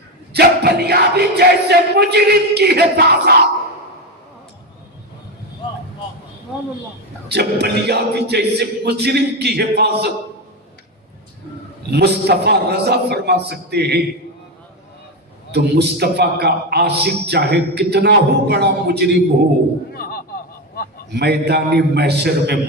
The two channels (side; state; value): both; normal; correlation 0.13